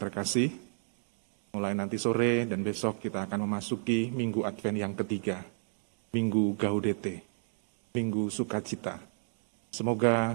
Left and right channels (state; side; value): silent; left; digital silence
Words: mulai nanti sore dan besok kita akan memasuki Minggu Advent yang ketiga, Minggu Gaudete, Minggu Sukacita.